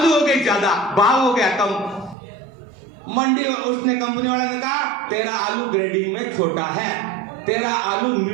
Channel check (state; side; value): drops out; left; at 2.1 s